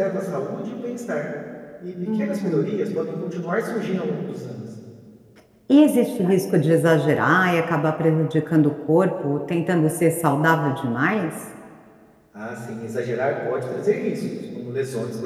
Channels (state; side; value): identical; both; correlation 1.00